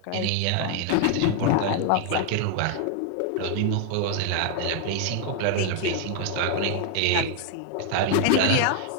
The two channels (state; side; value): different; both; correlation 0.00